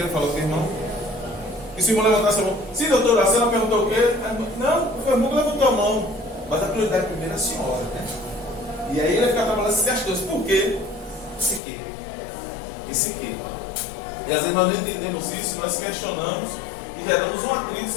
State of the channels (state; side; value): drops out; right; at 11.6 s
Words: falar com o irmão? E se o irmão levantasse a mão, sim, doutora, a senhora perguntou o quê? Não, o irmão levantou a mão. Mas a prioridade primeiro é a senhora, né? E aí ele ia ficar trabalhando essas questões. Por quê? Esse quê? Esse quê? E às vezes nós não entendemos isso, nós questionamos e já damos um atrito